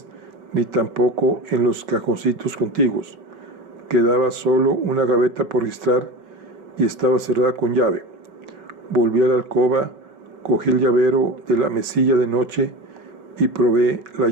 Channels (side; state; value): left; late; 5.4 ms